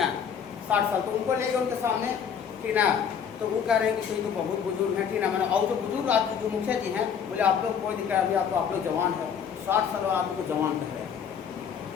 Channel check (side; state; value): right; quieter; 7.5 dB